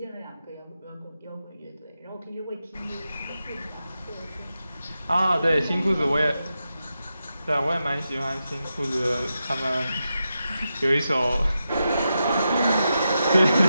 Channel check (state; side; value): inverted; both; correlation -0.88